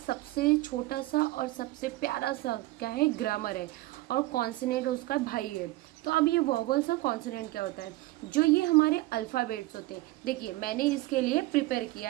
छोटा सा और सबसे प्यारा सा क्या है, ग्रामर है, और कॉन्सोनेंट उसका भाई है। तो अब ये वॉवल्स और कॉन्सोनेंट क्या होता है? जो ये हमारे अल्फ़ाबेट्स होते हैं। देखिए मैंने इसके लिए प्रिपेयर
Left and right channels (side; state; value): left; quieter; 18.8 dB